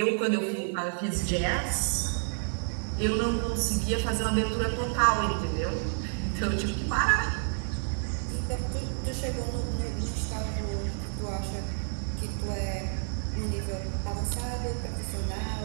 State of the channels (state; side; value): silent; left; 58 dB below the other